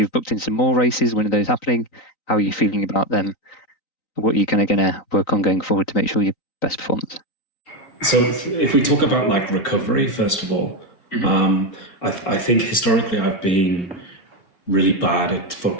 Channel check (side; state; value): right; late; 3.9 ms